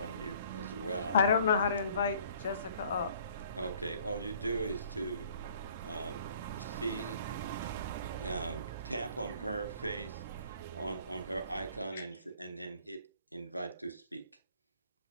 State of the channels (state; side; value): inverted; both; correlation -0.56